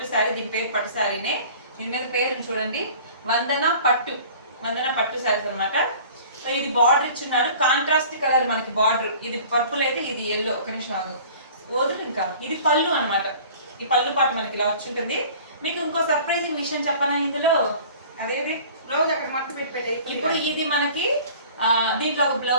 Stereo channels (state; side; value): inverted; both; correlation -0.46